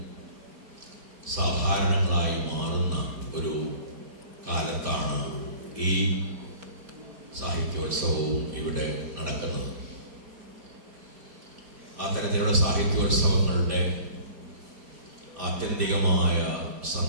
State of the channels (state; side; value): late; left; 5.0 ms